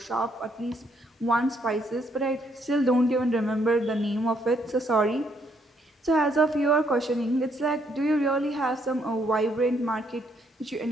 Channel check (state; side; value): normal; both; correlation 0.71